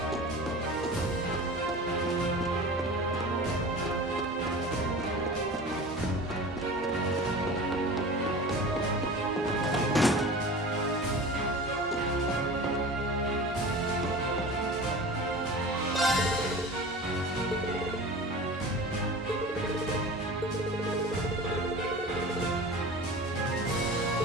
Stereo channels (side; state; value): both; normal; correlation 0.36